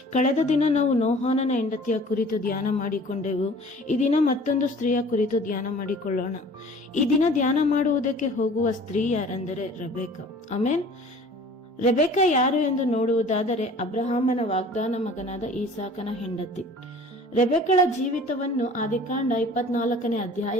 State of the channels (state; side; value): normal; both; correlation 0.47